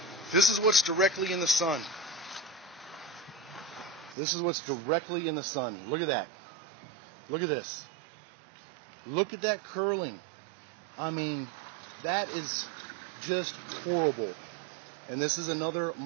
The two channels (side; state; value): left; drops out; at 4.2 s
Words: This is what's directly in the sun. This is what's directly in the sun. Look at that. Look at this. Look at that curling. I mean, that is just horrible. And this is another